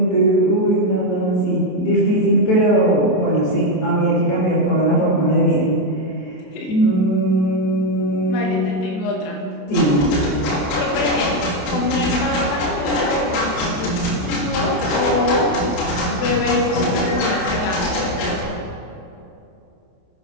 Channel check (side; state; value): right; late; 27 ms